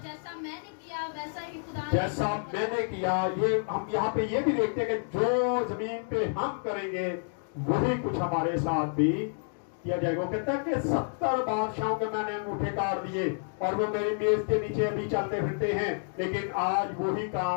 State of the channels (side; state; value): right; silent; digital silence